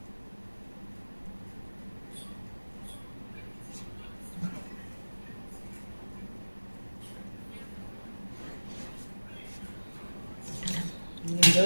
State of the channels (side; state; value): both; inverted; correlation -1.00